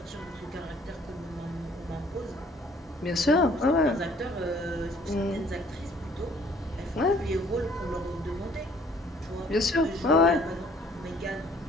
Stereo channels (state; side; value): normal; both; correlation 0.58